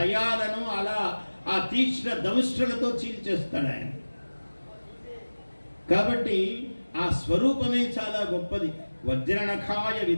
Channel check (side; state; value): both; inverted; correlation -1.00